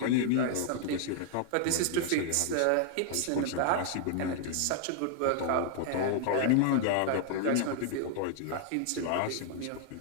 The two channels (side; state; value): both; different; correlation -0.01